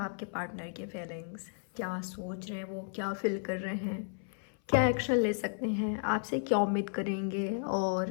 पार्टनर की फीलिंग्स, क्या सोच रहे हैं वो, क्या फील कर रहे हैं, क्या एक्शन ले सकते हैं, आपसे क्या उम्मीद करेंगे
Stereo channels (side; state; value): right; silent; 55 dB below the other